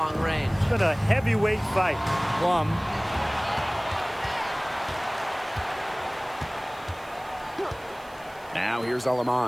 range. It's been a heavyweight fight. Plum. Now here's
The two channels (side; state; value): right; noise; hiss, 26 dB below the sound